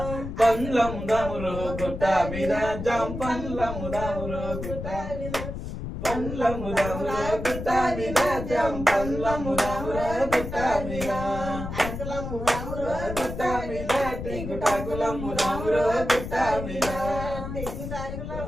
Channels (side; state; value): left; noise; rumble, 7 dB below the sound